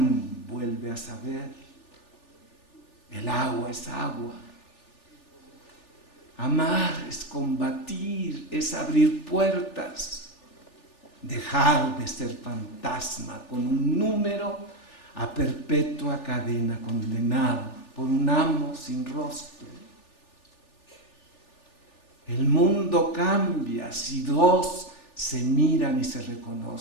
vuelve a saber. El agua es agua. Amar es combatir, es abrir puertas. Dejar de ser fantasma con un número a perpetua cadena condenado por un amo sin rostro. El mundo cambia si 2 se miran y se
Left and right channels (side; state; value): right; late; 3.4 ms